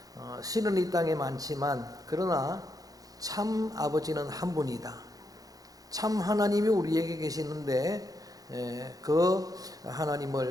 신은 이 땅에 많지만 그러나 참 아버지는 한 분이다. 참 하나님이 우리에게 계시는데 그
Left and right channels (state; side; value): late; left; 0.18 ms